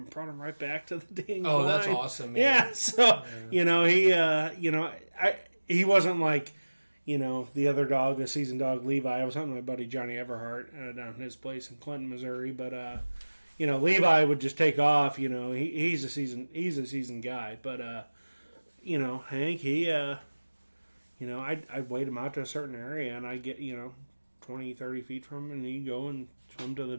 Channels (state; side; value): inverted; both; correlation -1.00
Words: and brought him right back to the dang line. That's awesome, man. Yeah, so he wasn't like the other dog, the seasoned dog Levi. I was hunting my buddy Johnny Everhart down at his place in Clinton, Missouri, but Levi would just take off. He's a seasoned guy, but Hank, he. I'd wait him out to a certain area, and I'd get, 20, 30 feet from him, and he'd go and swim to the